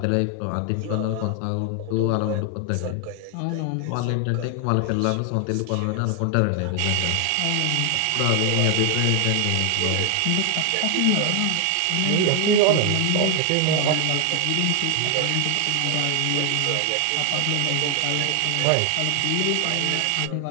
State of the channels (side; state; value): both; different; correlation 0.00